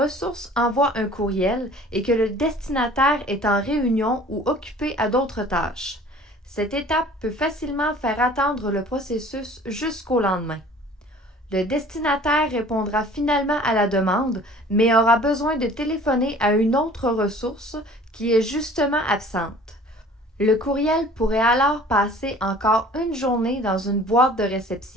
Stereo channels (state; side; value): normal; both; correlation 0.48